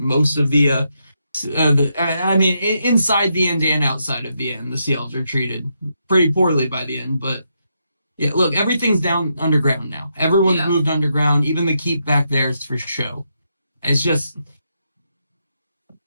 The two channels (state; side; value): inverted; both; correlation -0.81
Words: of the I mean, inside the end and outside of the end, the sea elves are treated pretty poorly by the end. But yeah, look, everything's down underground now. Everyone's moved underground. Even the keep back there is for show. It's just.